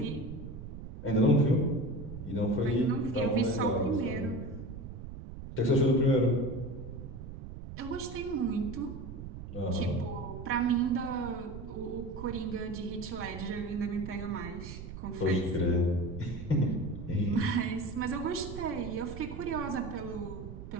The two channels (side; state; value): right; noise; rumble, 10 dB below the sound